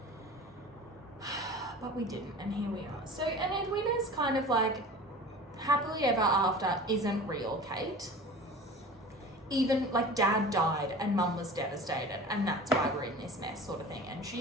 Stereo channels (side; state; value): both; normal; correlation 0.39